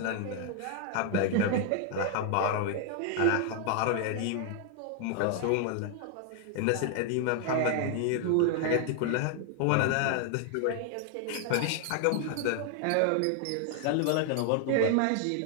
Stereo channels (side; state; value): both; different; correlation 0.00